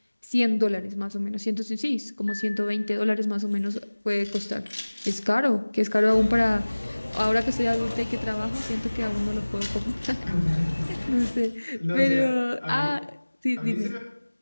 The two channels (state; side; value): inverted; both; correlation -1.00